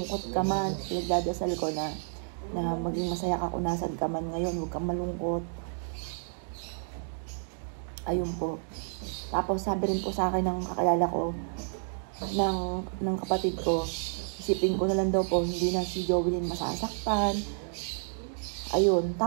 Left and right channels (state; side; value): silent; left; digital silence